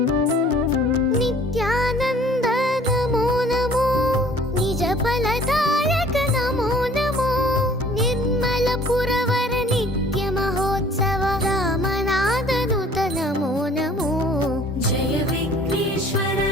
नित्यानंद नमो नमो निज फलदायक नमो नमो निर्मल पुरवर नित्य महोत्सव रामनादनुत नमो नमो जय विघ्नेश्वर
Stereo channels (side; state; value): both; normal; correlation 0.53